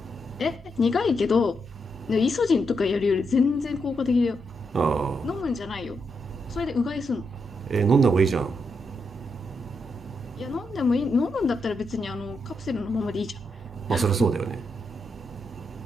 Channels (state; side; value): normal; both; correlation 0.82